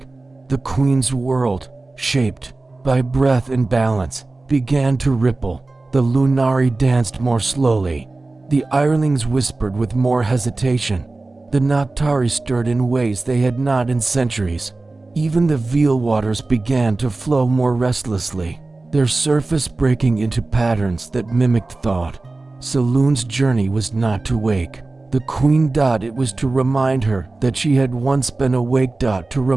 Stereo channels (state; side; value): quieter; left; 3.3 dB